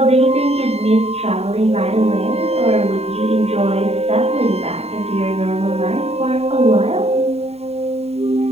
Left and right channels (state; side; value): late; left; 0.30 ms